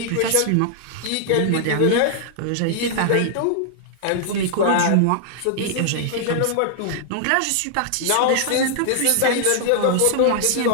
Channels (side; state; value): both; different; correlation -0.01